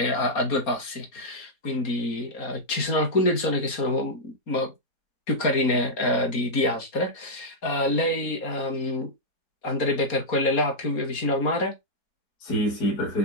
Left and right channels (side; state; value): right; late; 4.2 ms